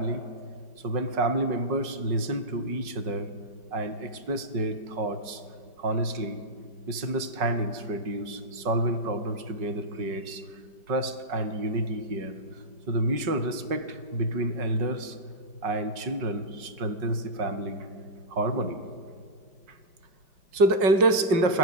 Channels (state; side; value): late; left; 5.4 ms